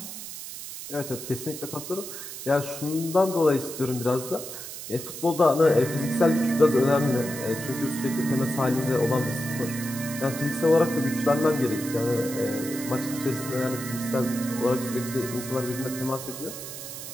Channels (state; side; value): noise; right; hiss, 10 dB below the sound